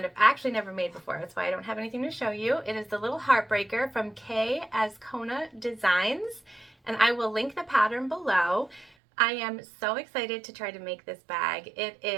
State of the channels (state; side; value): drops out; left; at 8.9 s